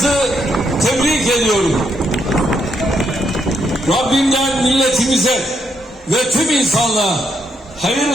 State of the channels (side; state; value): both; normal; correlation 0.78